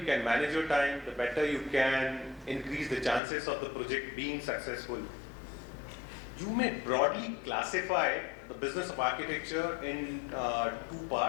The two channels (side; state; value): right; drops out; at 3.2 s